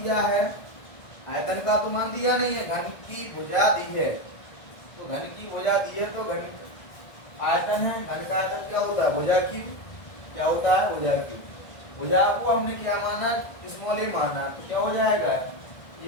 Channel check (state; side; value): late; right; 1.6 ms